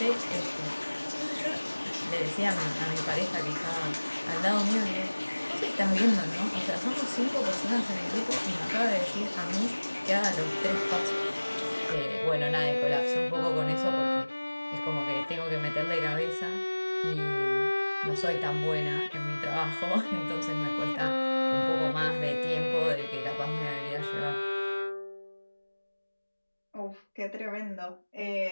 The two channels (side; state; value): both; inverted; correlation -1.00